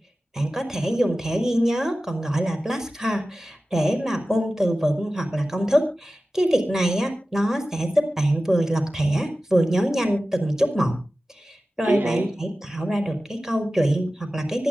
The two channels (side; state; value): both; normal; correlation 0.95